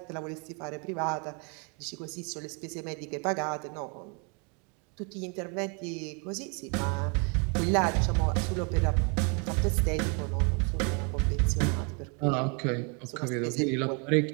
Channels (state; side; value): quieter; left; 35.0 dB